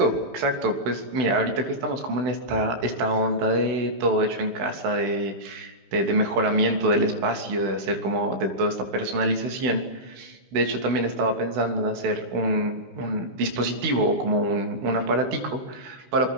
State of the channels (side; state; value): left; late; 16 ms